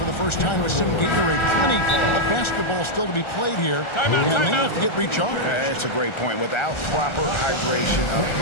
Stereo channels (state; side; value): late; right; 1.4 ms